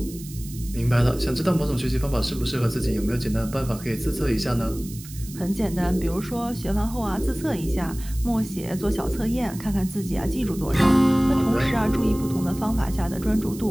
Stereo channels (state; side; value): noise; right; hiss, 16 dB below the sound